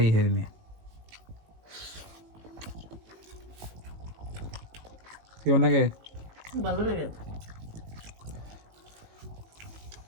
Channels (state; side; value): late; left; 19 ms